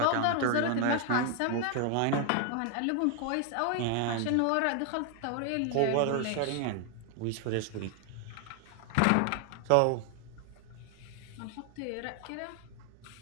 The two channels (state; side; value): different; both; correlation 0.00